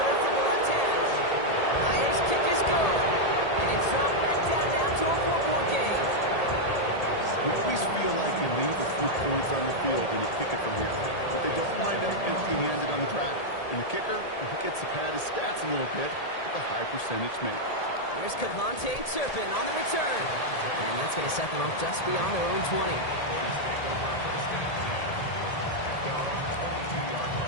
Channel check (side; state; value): right; late; 1.8 ms